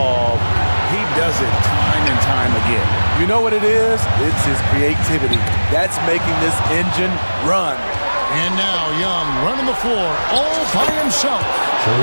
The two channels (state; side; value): inverted; both; correlation -1.00